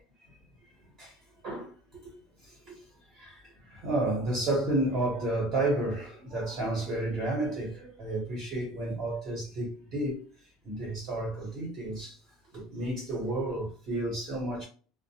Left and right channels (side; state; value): both; normal; correlation 0.45